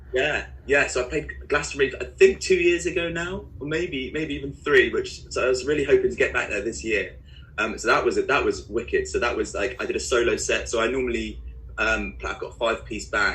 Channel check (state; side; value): identical; both; correlation 1.00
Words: So I played Glastonbury, I think 2 years ago now, or maybe even 3. So I was really hoping to get back there this year. So that was wicked. So that was like I did a solo set. So I normally I've got a 5-piece